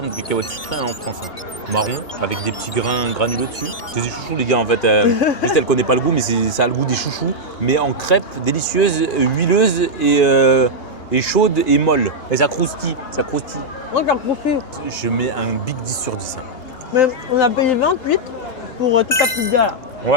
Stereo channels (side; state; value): right; late; 2.8 ms